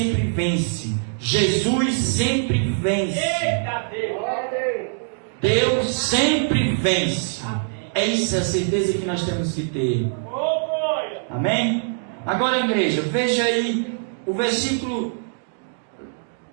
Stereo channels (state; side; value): silent; left; digital silence